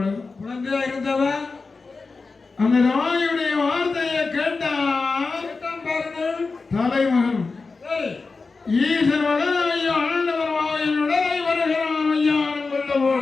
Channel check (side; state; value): right; quieter; 4.2 dB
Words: குழந்தையா இருந்தவன் அந்த தாயுடைய வார்த்தையை கேட்டான் பாருங்கள் தலைமகன் ஈசன் மகனாகி ஆண்டவர் வாயின் உடலை வருகிறான் ஐயான் கொல்ல